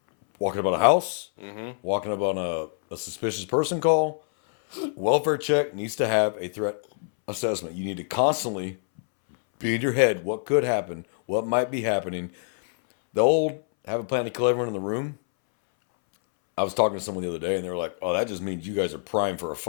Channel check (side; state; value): right; silent; 61 dB below the other